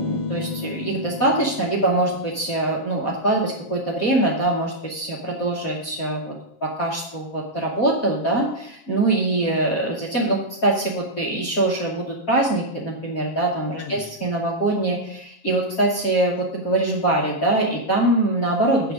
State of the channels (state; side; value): late; right; 7.3 ms